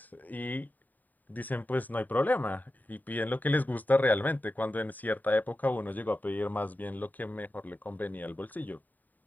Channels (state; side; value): late; right; 0.085 ms